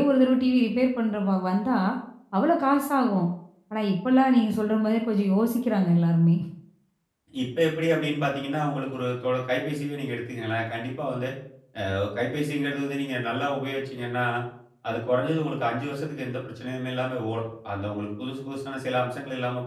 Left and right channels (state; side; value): identical; both; correlation 1.00